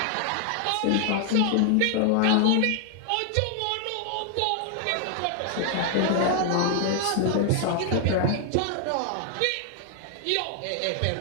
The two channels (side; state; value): both; different; correlation 0.00